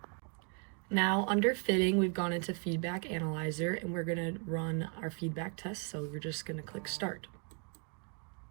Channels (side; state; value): left; quieter; 37.6 dB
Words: Now under fitting, we've gone into feedback analyzer and we're going to run our feedback test. So we're just going to click start.